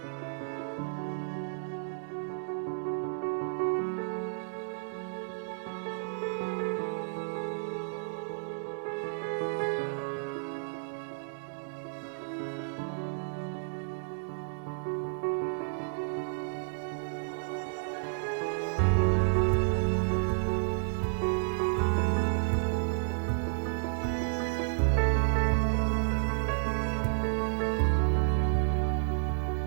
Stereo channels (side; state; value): left; silent; digital silence